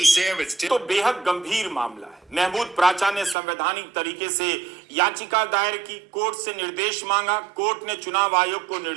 Sam, it's Tim. तो बेहद गंभीर मामला है। महमूद प्राचा ने संवैधानिक तरीके से याचिका दायर की, कोर्ट से निर्देश मांगा, कोर्ट ने चुनाव आयोग को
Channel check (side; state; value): left; drops out; at 3.4 s